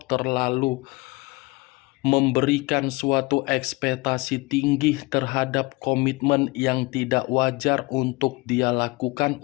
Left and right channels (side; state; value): right; quieter; 23.7 dB